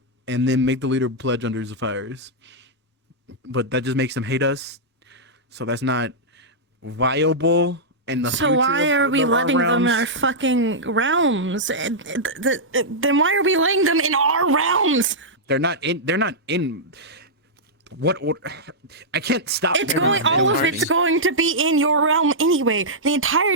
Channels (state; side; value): normal; both; correlation -0.10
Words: and then make the leader pledge under the fires. But that just makes them hate us, so that's not viable. In the So future why of are we our letting them in realms. our fucking realms? Then why are we letting them in our realms? They're not in. What order? I can't stop. It's them going. from All of doing it's things. going to be in your realm anyway. The